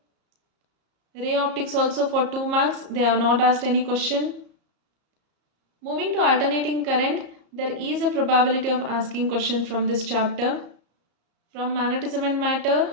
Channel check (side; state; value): left; late; 34 ms